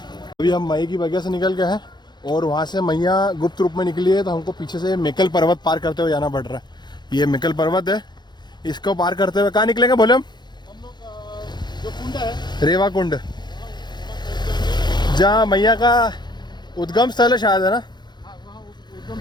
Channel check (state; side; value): late; right; 0.21 ms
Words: अभी हम मई की बगिया से निकल गए हैं और वहाँ से मैया गुप्त रूप में निकली है, तो हमको पीछे से मेकल पर्वत पार करते हुए जाना पड़ रहा है। ये मेकल पर्वत है, इसको पार करते हुए कहाँ निकलेंगे बोले हम लोग जो कुंड है रेवा कुंड, जहाँ मैया का उद्गम स्थल है शायद, है ना? हाँ, वहाँ उद्गम